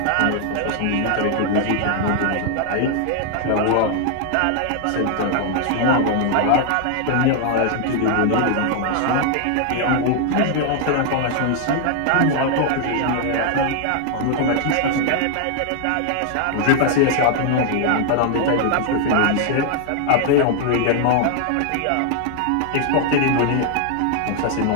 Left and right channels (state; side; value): different; both; correlation 0.00